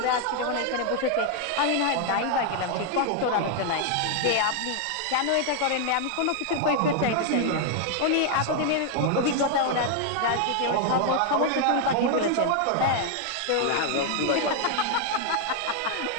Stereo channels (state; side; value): different; both; correlation 0.00